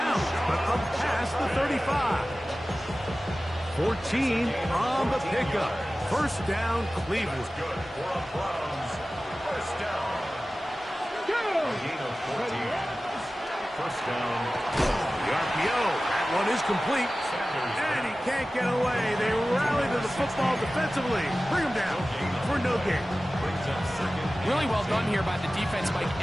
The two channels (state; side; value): normal; both; correlation 0.96